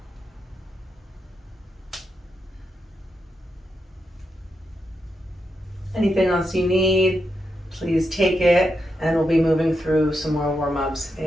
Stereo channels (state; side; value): normal; both; correlation 0.84